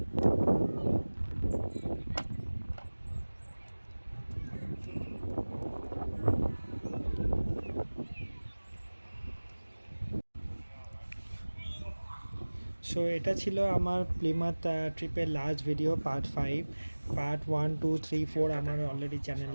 সো এটা ছিল আমার প্লিমাথ ট্রিপের লাস্ট ভিডিও, পার্ট 5। পার্ট 1, 2, 3, 4 আমার অলরেডি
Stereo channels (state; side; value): inverted; both; correlation -1.00